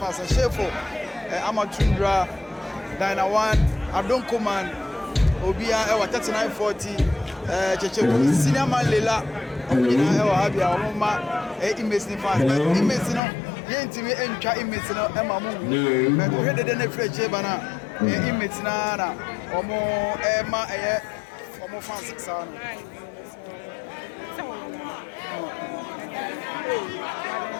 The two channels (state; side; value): drops out; right; at 13.2 s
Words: Shefo, Amatundra, Dina One, Adon Command, Obia, 3940, Cheche, Senior Man Lela, Obina, Habia, Oma, inmates in fast. Inmates no, Yentimi and Cha inmates no, Emma Moon, but we had the Fletcher Bana, inmates na, Omo Emma, Omo Fancy Sound.